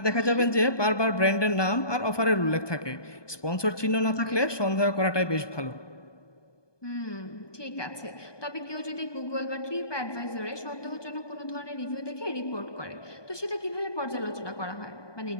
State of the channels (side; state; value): right; late; 1.2 ms